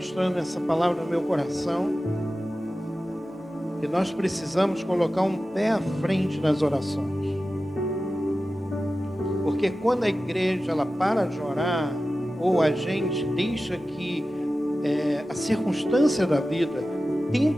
essa palavra no meu coração, que nós precisamos colocar um pé à frente nas orações. Porque quando a igreja ela para de orar, ou a gente deixa que a circunstância da vida, o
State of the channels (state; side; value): normal; both; correlation 0.94